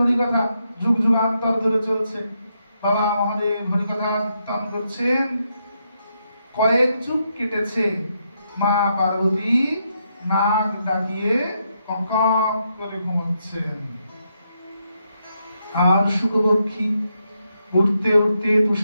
হরি কথা যুগ যুগান্তর ধরে চলছে। বাবা মহাদেব হরি কথা কীর্তন করছেন, কয়েক যুগ কেটেছে। মা পার্বতী নাক ডাকিয়ে কঙ্কক করে ঘুমাচ্ছেন, আর শুকপক্ষী উঠতে উঠতে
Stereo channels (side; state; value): both; inverted; correlation -0.80